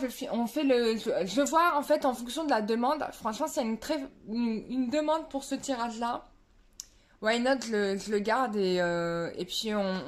voir en fait en fonction de la demande. Franchement, s'il y a une demande pour ce tirage-là, why not, je le garde et puis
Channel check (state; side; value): identical; both; correlation 1.00